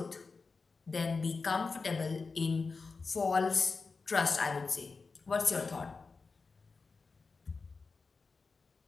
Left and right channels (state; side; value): quieter; right; 4.4 dB